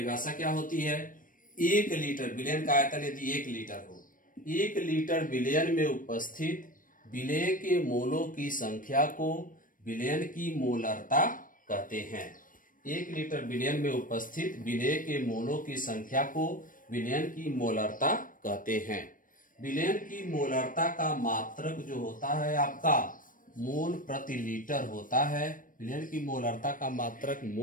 क्या होती है? 1 लीटर विलयन का आयतन यदि 1 लीटर हो, 1 लीटर विलयन में उपस्थित विलेय के मोलों की संख्या को विलयन की मोलरता कहते हैं। 1 लीटर विलयन में उपस्थित विलेय के मोलों की संख्या को विलयन की मोलरता कहते हैं। विलयन की मोलरता का मात्रक जो होता है आपका मोल प्रति लीटर होता है। विलयन की मोलरता का मात्रक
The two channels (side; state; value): right; late; 0.39 ms